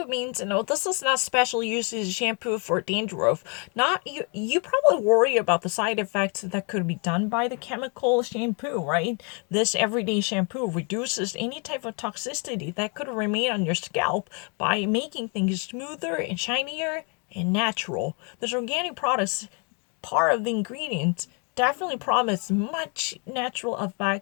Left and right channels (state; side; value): quieter; right; 36.1 dB